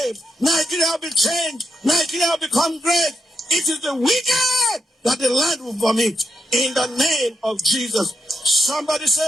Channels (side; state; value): both; normal; correlation 0.82